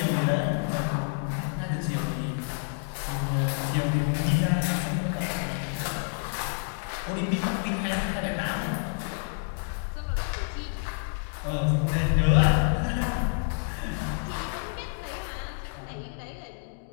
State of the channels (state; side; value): silent; right; 59 dB below the other